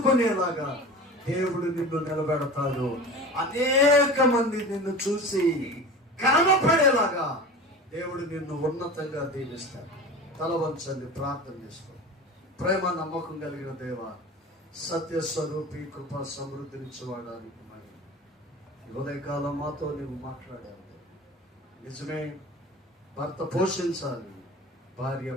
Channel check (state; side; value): normal; both; correlation 0.35